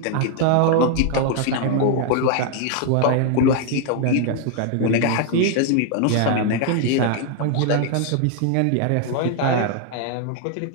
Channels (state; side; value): different; both; correlation 0.00